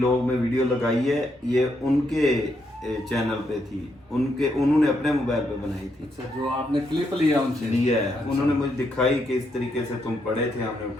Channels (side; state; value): both; normal; correlation 0.78